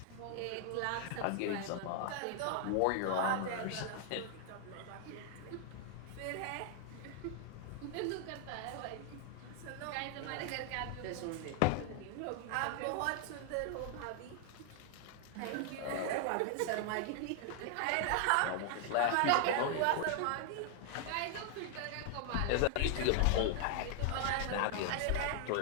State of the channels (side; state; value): both; different; correlation 0.00